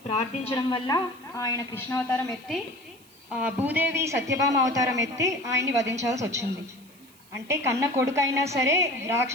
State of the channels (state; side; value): noise; right; hiss, 26 dB below the sound